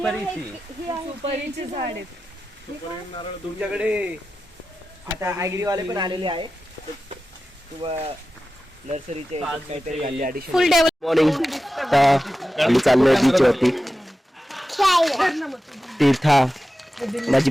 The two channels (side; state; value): both; normal; correlation 0.93